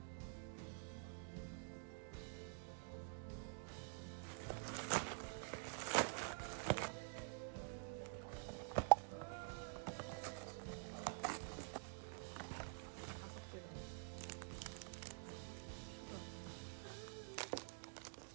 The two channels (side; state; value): left; silent; digital silence